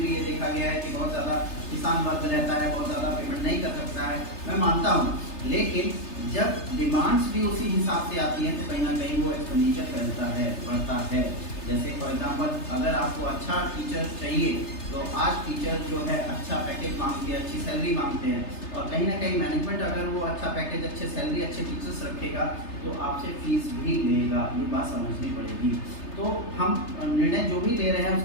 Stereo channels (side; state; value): right; late; 3.3 ms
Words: भी ये देखा गया है कि बहुत ज़्यादा किसान वर्ग रहता है, बहुत ज़्यादा पेमेंट नहीं कर सकता है, मैं मानता हूँ। लेकिन जब डिमांड्स भी उसी हिसाब से आती हैं तो कहीं ना कहीं वो एक्सपेंडिचर फैलता है, बढ़ता है। जैसे फॉर एग्जांपल अगर आपको अच्छा टीचर चाहिए तो आज टीचर जो है अच्छा पैकेज मांगते हैं, अच्छी सैलरी मांगते हैं, और कहीं ना कहीं मैनेजमेंट अगर वो अच्छा पैकेज, अच्छे सैलरी, अच्छे टीचर्स रखेगा तो आपसे फीस भी लेगा। ये बात समझनी पड़ेगी। तो हम निर्णय जो भी ले रहे हैं